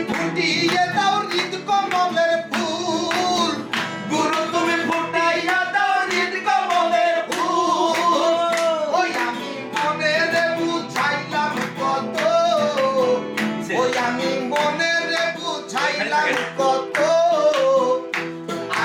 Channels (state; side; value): identical; both; correlation 1.00